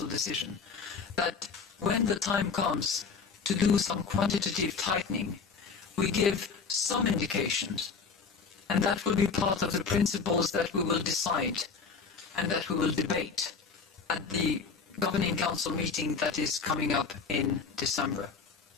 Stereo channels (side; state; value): right; quieter; 5.3 dB